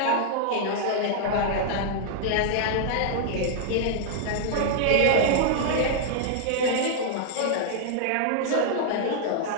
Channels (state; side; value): different; both; correlation -0.01